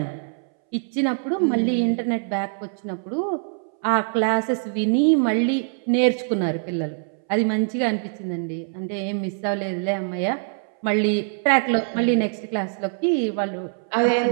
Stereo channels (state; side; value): silent; left; 63 dB below the other